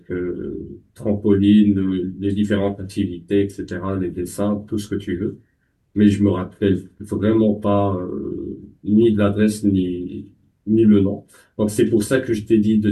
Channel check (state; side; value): identical; both; correlation 1.00